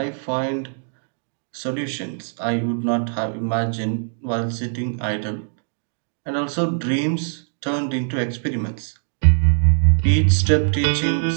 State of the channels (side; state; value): left; silent; digital silence